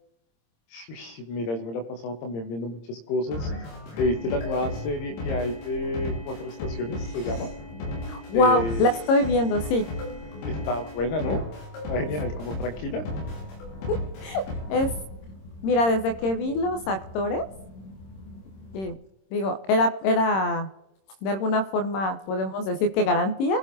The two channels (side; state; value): right; late; 26 ms